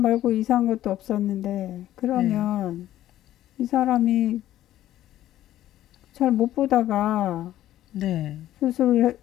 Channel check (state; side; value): quieter; right; 13.3 dB